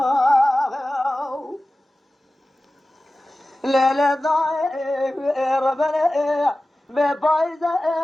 ليلة ضايع ربنا ببايزة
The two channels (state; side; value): normal; both; correlation 0.96